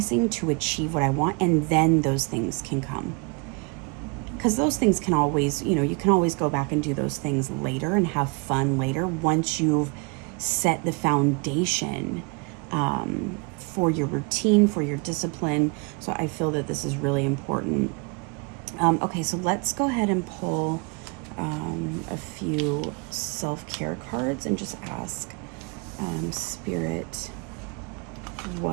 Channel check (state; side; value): quieter; left; 32.0 dB